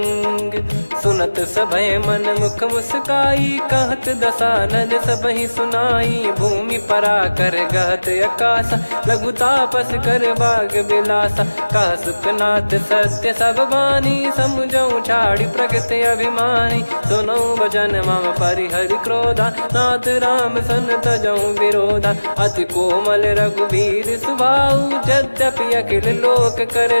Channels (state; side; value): inverted; both; correlation -1.00